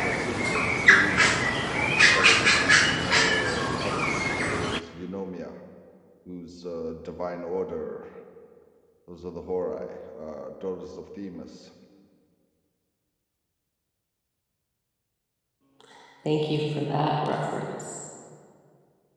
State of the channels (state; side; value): identical; both; correlation 1.00